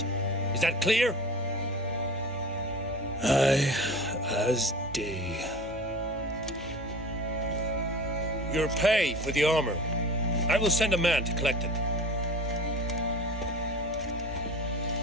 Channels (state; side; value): normal; both; correlation 0.37